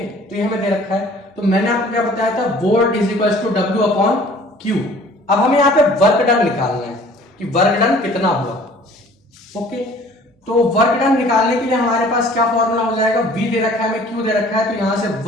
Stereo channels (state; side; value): normal; both; correlation 0.51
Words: तो ये हमें दे रखा है। तो मैंने आपको क्या बताया था, volt is equal to W upon Q। अब हमें यहाँ पे वर्क डन निकालना है कि वर्क डन कितना हुआ, ओके। तो वर्क डन निकालने के लिए हमारे पास क्या फॉर्मूला हो जाएगा, V दे रखा है, हमें Q दे रखा है, तो यहां से